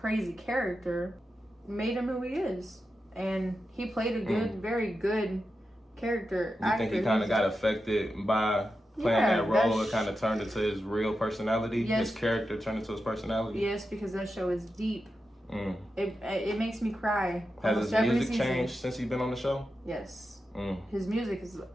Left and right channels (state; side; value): normal; both; correlation 0.90